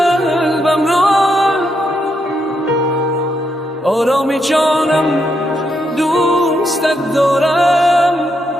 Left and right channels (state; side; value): normal; both; correlation 0.80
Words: را، آرامی جانم دوستت دارم،